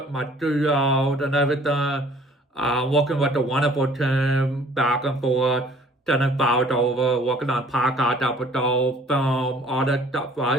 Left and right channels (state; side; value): normal; both; correlation 0.55